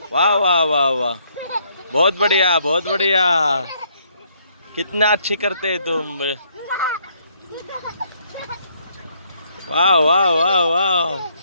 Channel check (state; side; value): inverted; both; correlation -0.69